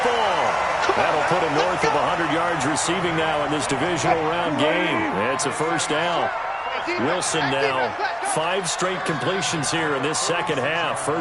That'll put him north of 100 yards receiving now in this divisional round game. It's a 1st down. Wilson now 5 straight completions here in this 2nd half.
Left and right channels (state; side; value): identical; both; correlation 1.00